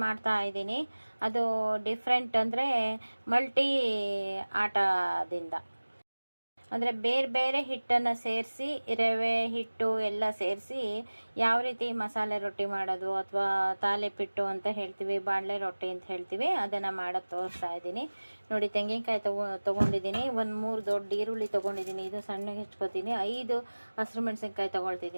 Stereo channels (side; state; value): both; inverted; correlation -1.00